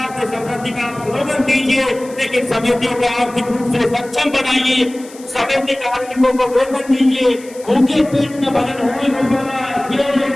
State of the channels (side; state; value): left; noise; hiss, 21 dB below the sound